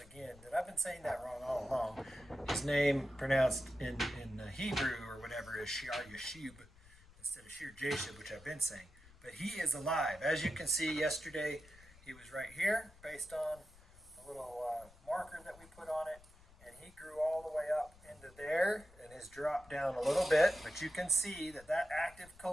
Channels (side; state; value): left; noise; rumble, 23 dB below the sound